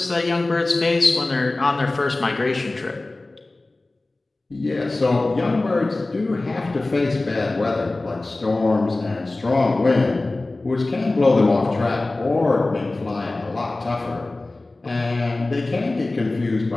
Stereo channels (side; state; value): right; quieter; 3.0 dB